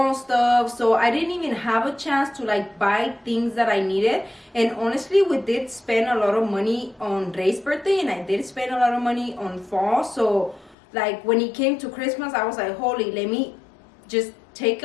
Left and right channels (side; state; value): right; drops out; at 10.8 s